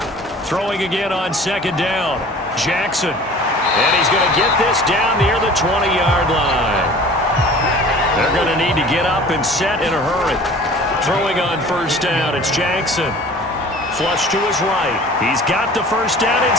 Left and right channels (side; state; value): both; normal; correlation 0.45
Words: Throwing again on 2nd down. Jackson. And he's going to get this down near the 20-yard line. They're going to need to get up and set in a hurry. Throwing on 1st down, it's Jackson. Flush to his right. He's got the 1st down